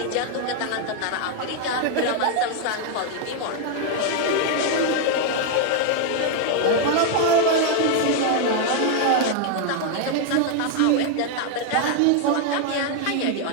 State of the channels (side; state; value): both; different; correlation 0.00